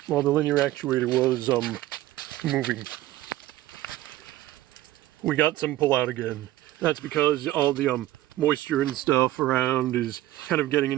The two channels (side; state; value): left; quieter; 15.4 dB